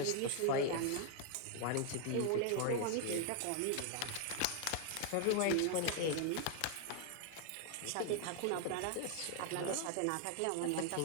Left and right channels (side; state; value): both; different; correlation 0.00